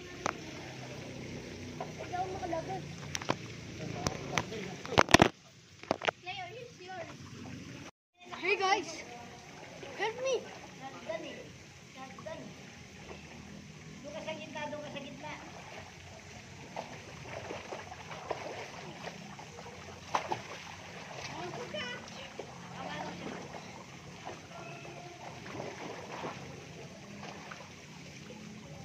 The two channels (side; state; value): both; identical; correlation 1.00